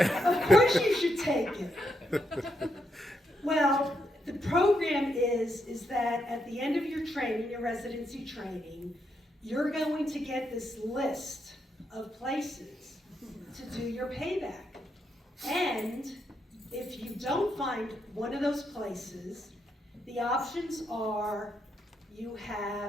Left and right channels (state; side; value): normal; both; correlation 0.80